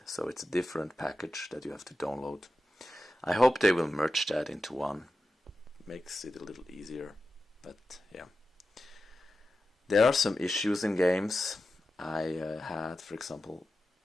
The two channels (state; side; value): normal; both; correlation 0.92